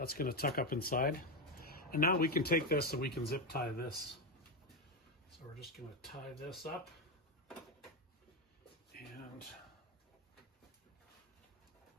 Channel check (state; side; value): normal; both; correlation 0.10